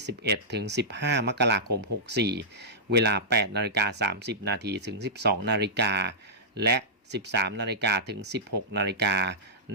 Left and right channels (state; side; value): normal; both; correlation -0.13